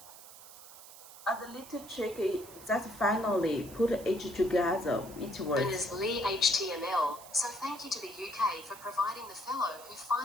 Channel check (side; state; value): right; noise; hiss, 17 dB below the sound